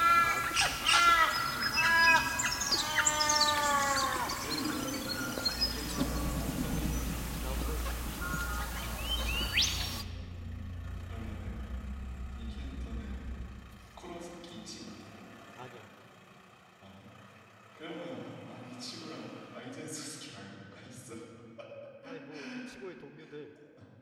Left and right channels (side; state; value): both; identical; correlation 1.00